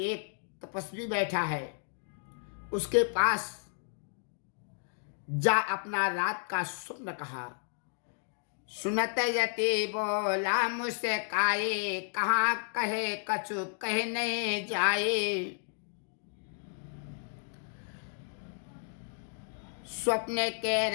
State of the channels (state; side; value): silent; right; digital silence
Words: एक तपस्वी बैठा है, उसके पास जा अपना रात का स्वप्न कहा। सुनत यति बोला मुझसे काये, कहाँ कहे कछु कहने जाए। स्वप्न